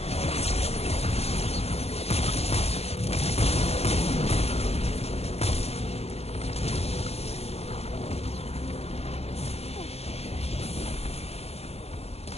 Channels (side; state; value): right; late; 0.30 ms